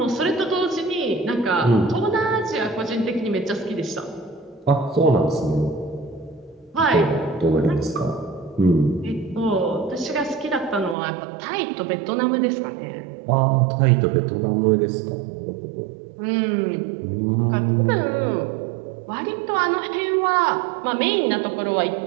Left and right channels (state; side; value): drops out; left; at 11.0 s